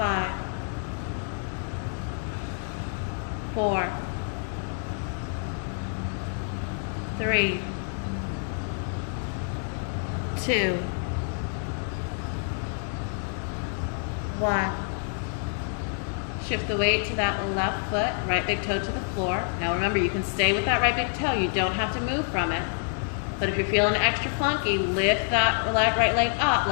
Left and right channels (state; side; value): silent; right; 60 dB below the other